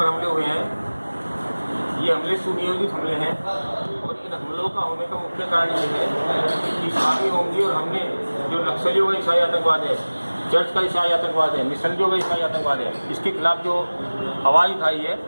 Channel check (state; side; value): inverted; both; correlation -1.00